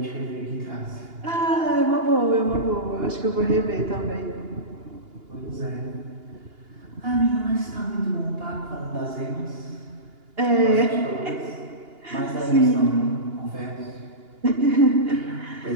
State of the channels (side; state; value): left; late; 2.8 ms